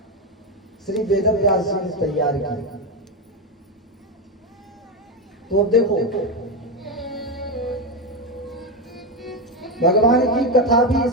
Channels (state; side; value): normal; both; correlation 0.10